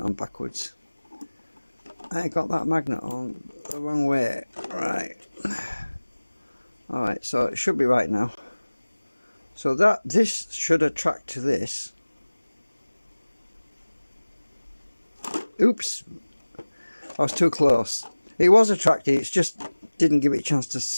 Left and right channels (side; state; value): both; inverted; correlation -1.00